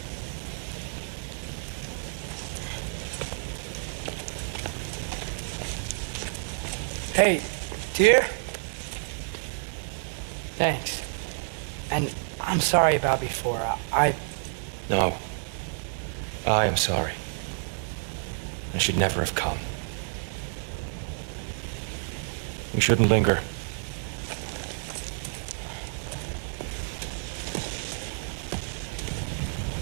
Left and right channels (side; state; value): left; silent; digital silence